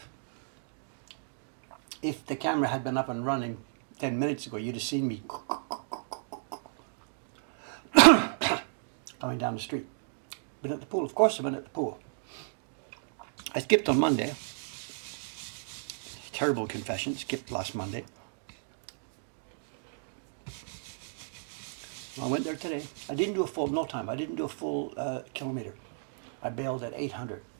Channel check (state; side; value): silent; left; digital silence